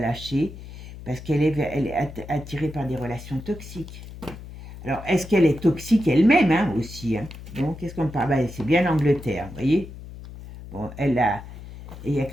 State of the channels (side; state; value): left; noise; hum, 14 dB below the sound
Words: parce elle est attirée par des relations toxiques. Alors, est-ce qu'elle est toxique elle-même, hein, aussi, hein? Donc, qu'est-ce qu'on parle? Ben, c'est bien l'Angleterre, vous voyez. Bon, il y a